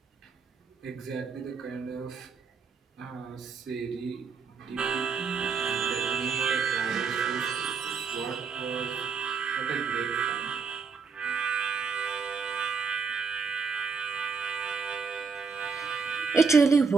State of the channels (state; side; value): quieter; left; 5.4 dB